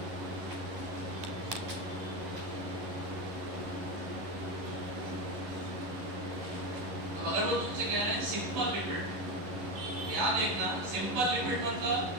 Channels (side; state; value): left; late; 11 ms